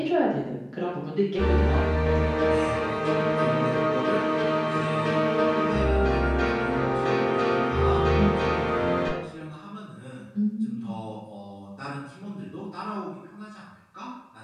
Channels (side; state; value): both; identical; correlation 1.00